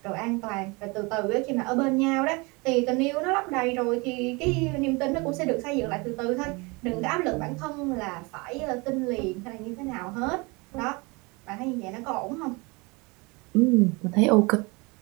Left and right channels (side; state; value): left; quieter; 27.3 dB